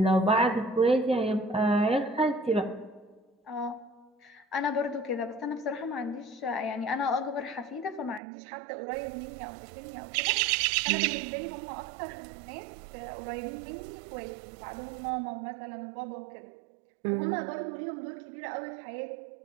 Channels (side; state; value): left; drops out; at 8.2 s